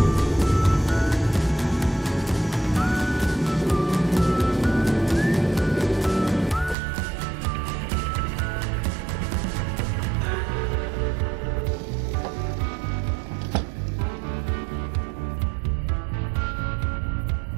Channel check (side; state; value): left; drops out; at 6.8 s